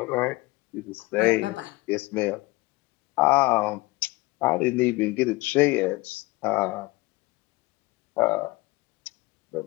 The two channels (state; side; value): quieter; right; 22.0 dB